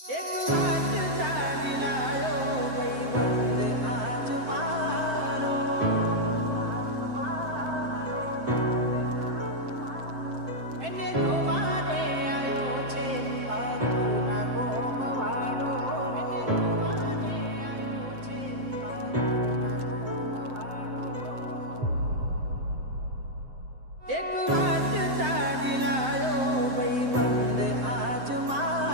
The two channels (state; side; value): late; left; 7.7 ms